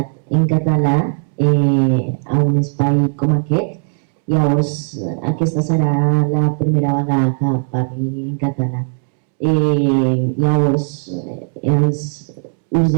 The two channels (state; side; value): silent; left; 68 dB below the other